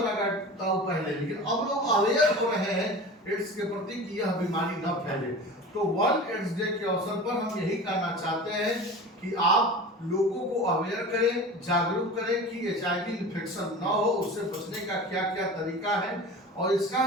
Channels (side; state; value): both; normal; correlation 0.34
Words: का पहले, लेकिन अब लोग अवेयर हो रहे हैं एड्स के प्रति कि यह बीमारी न फैले। तो वर्ल्ड एड्स डे के अवसर पर हम यही कहना चाहते हैं कि आप लोगों को अवेयर करें, जागरूक करें कि HIV इन्फेक्शन ना हो, उससे बचने का क्या क्या तरीका है, और इसका